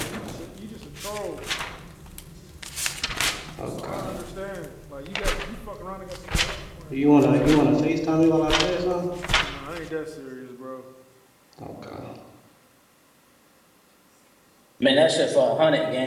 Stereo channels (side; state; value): both; identical; correlation 1.00